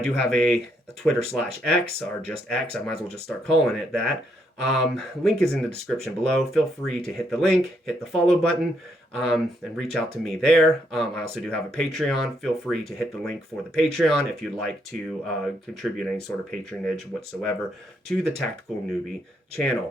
have a Twitter/X, or just X, I might as well just start calling it that. Link is in the description below. Feel free to hit the link, hit the follow button, and reach out to me there. I also do have a Patreon. Feel free to hit the link for the Patreon if you'd like to contribute any sort of patronage whatsoever to the Tactical Newbie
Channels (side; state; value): both; normal; correlation 0.75